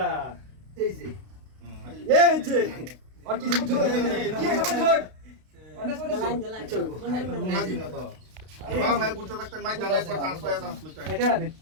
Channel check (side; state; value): left; late; 32 ms